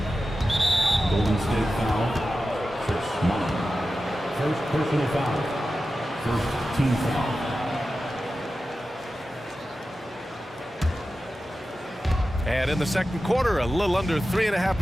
Golden State foul. Chris Mullin. First personal foul. First team foul. And in the second quarter, a little under 3.5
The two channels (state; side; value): normal; both; correlation 0.93